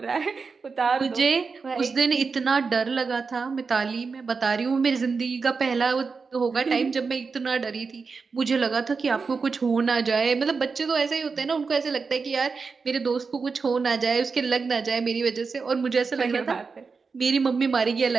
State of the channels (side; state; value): left; quieter; 4.9 dB